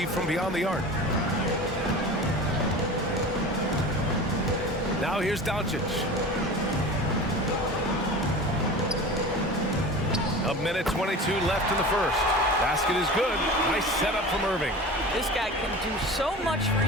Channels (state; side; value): normal; both; correlation 0.35